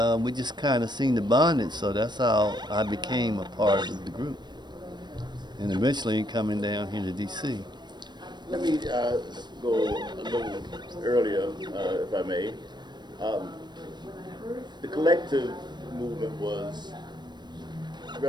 we just kind of seen the bondage, so that's how I became a part of the group. And eventually coming down here to D.C. Let me go a little earlier, if I may. The collective movement was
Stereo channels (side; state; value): left; late; 0.21 ms